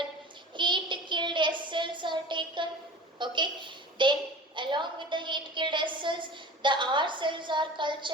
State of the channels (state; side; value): normal; both; correlation 0.37